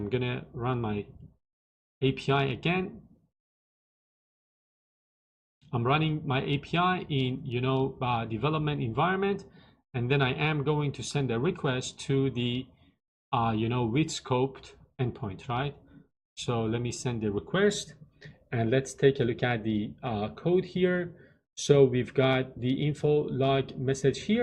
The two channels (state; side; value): identical; both; correlation 1.00